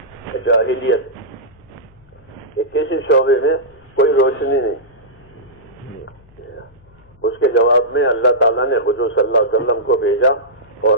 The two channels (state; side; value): noise; left; hum, 29 dB below the sound